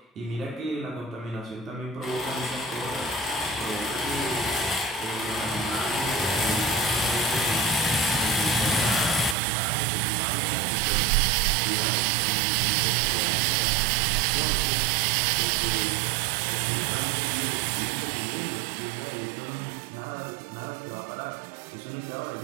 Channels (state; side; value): drops out; left; at 9.3 s